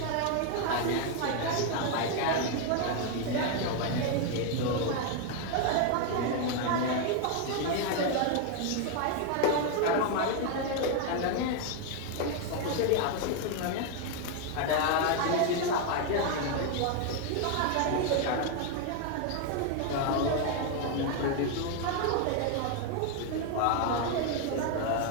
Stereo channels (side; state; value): both; different; correlation 0.01